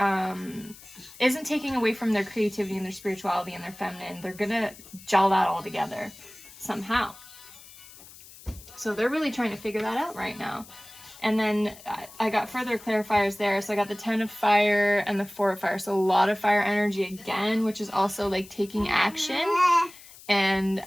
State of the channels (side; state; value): left; noise; hiss, 20 dB below the sound